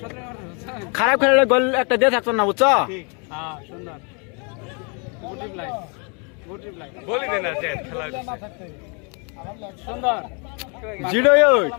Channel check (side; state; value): right; quieter; 35.4 dB